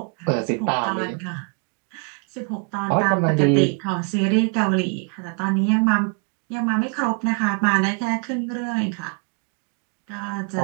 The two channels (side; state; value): left; quieter; 38.5 dB